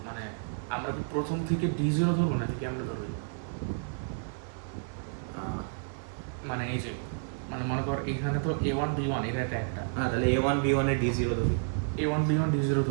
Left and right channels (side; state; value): left; silent; 57 dB below the other